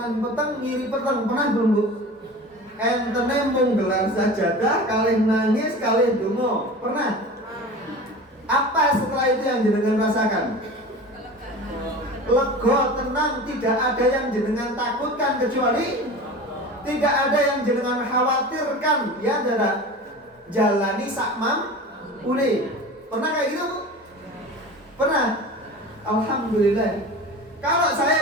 peteng, ngiri peteng, pernah belum Bu? Entene mung gelar sajadah, kalih nangis, kalih donga, pernah? Apa setelah itu yang jenengan rasakan? Lega, tenang, tidak ada yang jenengan takutkan kecuali tidak ada yang jenengan khawatirkan, ya tidak? Jalani sakmam ule. Pernah kayak gitu Bu? Pernah? Alhamdulillah. Kalau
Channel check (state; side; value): normal; both; correlation 0.35